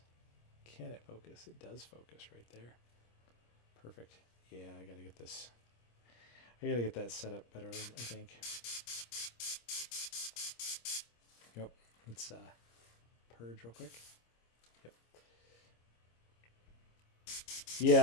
Can it focus? It does focus right there. Perfect. Yeah, I gotta get this. I gotta get that set up better, I think. Yep. Let's purge real quick. Yep.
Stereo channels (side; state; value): right; late; 26 ms